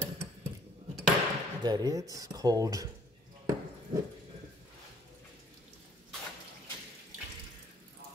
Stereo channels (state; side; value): normal; both; correlation 0.60